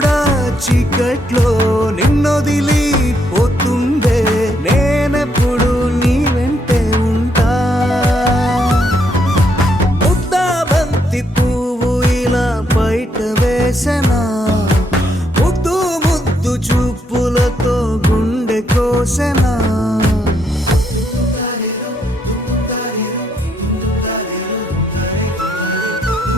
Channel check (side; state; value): both; normal; correlation 0.74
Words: చీకట్లో నిన్నొదిలి పోతుందే నేనెప్పుడు నీ వెంటే ఉంటా ముద్దాబంతి పువ్వు ఇలా బయట వేసెనా ముద్దు ముద్దు చూపులతో గుండె కోసెనా